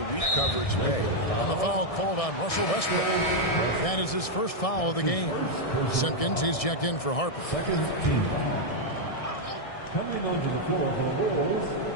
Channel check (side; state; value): right; late; 1.6 ms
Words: weak coverage pay. And the foul called on Russell Westbrook. That is his first foul of the game. Simpkins, he's checked in for Harper. Second team. Coming onto the floor for the Bulls,